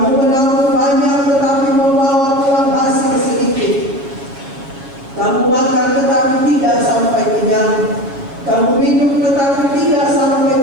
menabur banyak tetapi membawa pulang hasil sedikit. Kamu makan tetapi tidak sampai kenyang. Kamu minum tetapi tidak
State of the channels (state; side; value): late; left; 7.4 ms